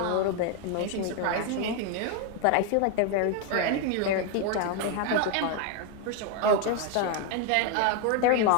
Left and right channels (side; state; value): both; different; correlation 0.01